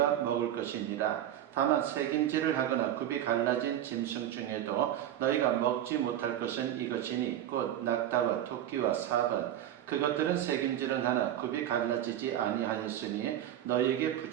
먹을 것이니라. 다만 새김질을 하거나 굽이 갈라진 짐승 중에도 너희가 먹지 못할 것은 이것이니 곧 낙타와 토끼와 사번. 그것들은 새김질은 하나 굽이 갈라지지 아니하였으니 너희에게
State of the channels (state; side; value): quieter; left; 11.6 dB